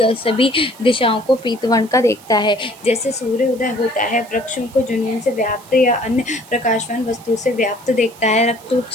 दिशाओं को पीतवर्ण का देखता है। जैसे सूर्य उदय होता है, वृक्षों को जुनून से व्याप्त या अन्य प्रकाशवान वस्तु से व्याप्त देखता है। रक्त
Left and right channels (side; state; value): right; noise; hiss, 23 dB below the sound